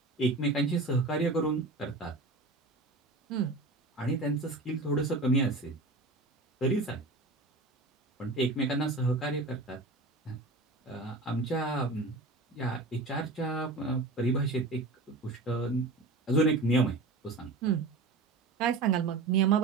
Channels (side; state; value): left; quieter; 3.2 dB